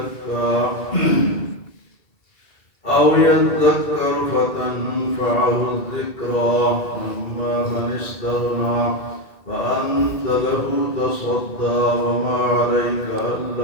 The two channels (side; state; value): right; late; 2.3 ms